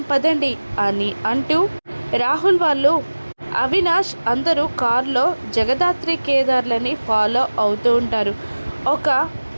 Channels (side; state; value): both; inverted; correlation -1.00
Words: పదండి అని అంటూ రాహుల్ వాళ్ళు అవినాష్ అందరూ కారులో జగదాత్రి కేదార్లని ఫాలో అవుతూ ఉంటారు. ఒక